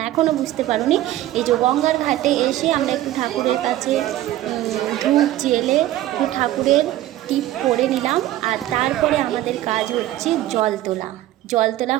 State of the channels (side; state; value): left; quieter; 14.4 dB